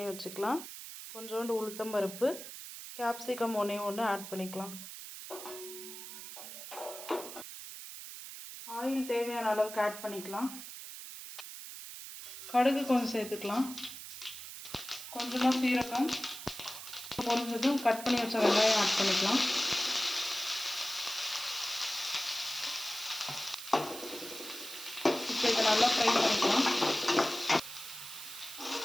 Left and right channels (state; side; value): noise; right; hiss, 11 dB below the sound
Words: வச்சுக்கலாம், கொஞ்சோண்டு உளுத்தம்பருப்பு, கேப்சிகம் 1 ஆட் பண்ணிக்கலாம். ஆயில் தேவையான அளவுக்கு ஆட் பண்ணிக்கலாம். கடுகு கொஞ்சம் சேர்த்துக்கலாம், கொஞ்சமாக சீரகம், பொரிஞ்சதும் கட் பண்ணி வச்ச வெங்காயம் ஆட் பண்ணிக்கலாம். இப்போ இதை நல்லா ஃப்ரை பண்ணிக்கலாம்.